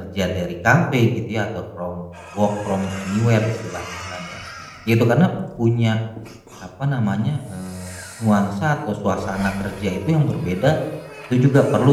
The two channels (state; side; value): identical; both; correlation 1.00